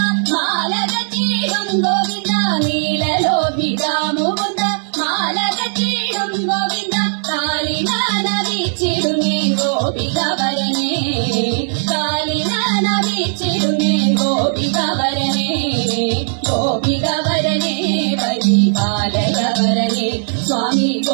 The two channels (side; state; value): left; silent; digital silence